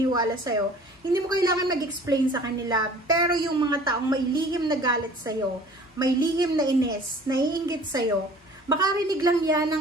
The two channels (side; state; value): both; normal; correlation 0.49